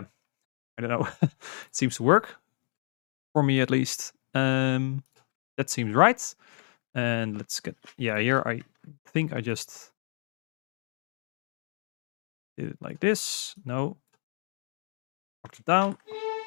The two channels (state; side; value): silent; right; 58 dB below the other